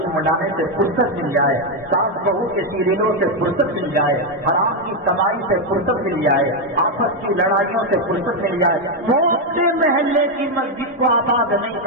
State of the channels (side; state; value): both; normal; correlation 0.04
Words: منڈانے سے فرصت مل جائے، ساس بہو کے سیریلوں سے فرصت مل جائے، حرام کی کمائی سے فرصت مل جائے، آپس کی لڑائیوں سے فرصت مل جائے، چھوٹے محلے کی مسجد کو آباد نہیں